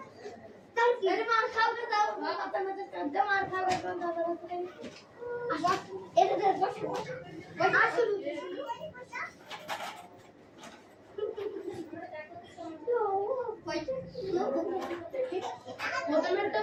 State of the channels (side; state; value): both; identical; correlation 1.00